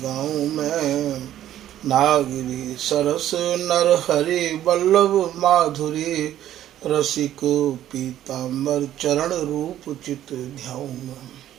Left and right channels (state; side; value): quieter; left; 12.1 dB